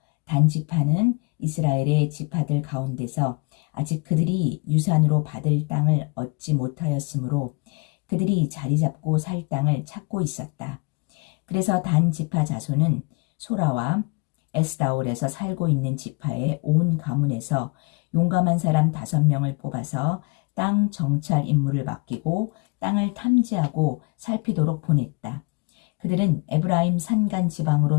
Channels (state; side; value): quieter; right; 29.7 dB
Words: 단 지파는 이스라엘의 지파들 가운데서 아직 그들이 유산으로 받을 땅을 얻지 못하였으므로 그들이 자리 잡고 살 땅을 찾고 있었다. 그래서 단 지파 자손은 소라와 에스다올에서 살고 있는 지파의 온 가문에서 용감한 사람 5명을 뽑아서 땅 정찰 임무를 맡기고 땅을 탐지하고 살피도록 보냈다. 그들은 에브라임 산간